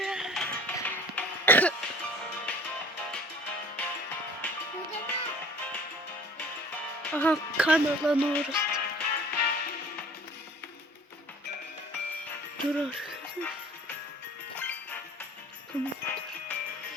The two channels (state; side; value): normal; both; correlation 0.48